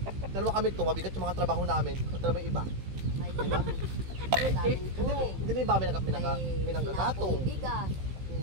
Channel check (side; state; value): left; late; 15 ms